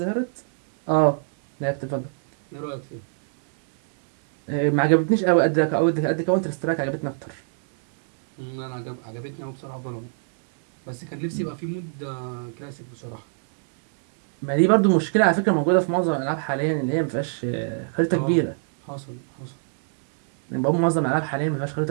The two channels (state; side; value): silent; left; digital silence